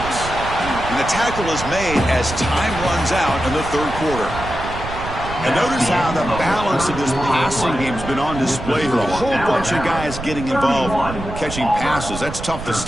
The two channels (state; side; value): noise; right; rumble, 9 dB below the sound